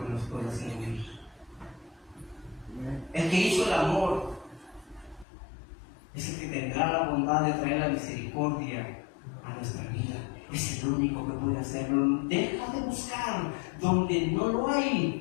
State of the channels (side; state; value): right; drops out; at 5.2 s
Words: que nos puede hacer oír. El que hizo el amor es el que tendrá la bondad de traer la misericordia a nuestra vida. Es el único que puede hacerlo. Deja de buscar donde no lo